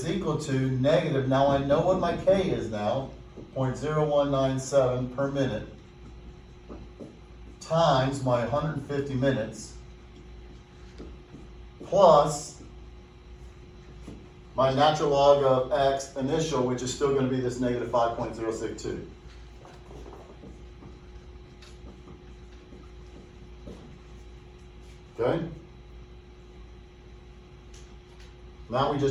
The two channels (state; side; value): identical; both; correlation 1.00